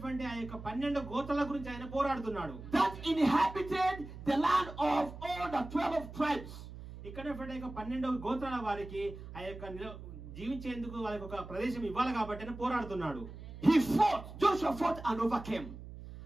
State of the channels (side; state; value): right; noise; hum, 13 dB below the sound